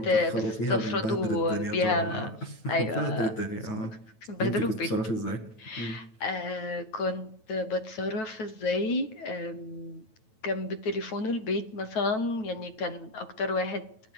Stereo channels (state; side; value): late; right; 9.2 ms